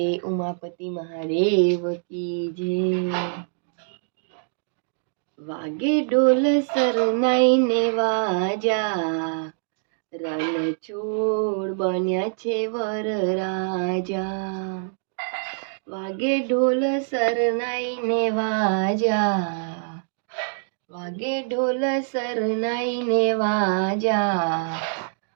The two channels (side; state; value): left; silent; digital silence